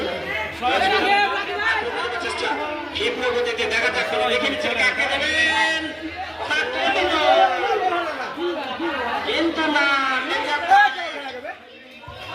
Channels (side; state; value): both; identical; correlation 1.00